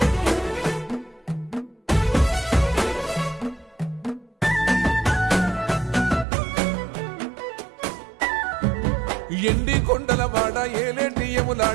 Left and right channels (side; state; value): left; drops out; at 6.2 s